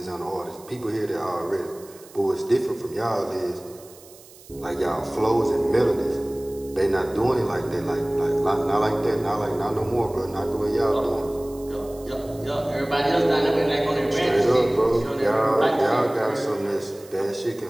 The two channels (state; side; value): noise; right; hiss, 22 dB below the sound